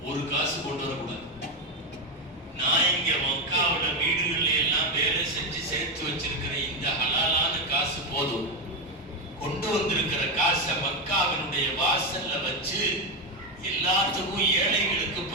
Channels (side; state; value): both; normal; correlation 0.09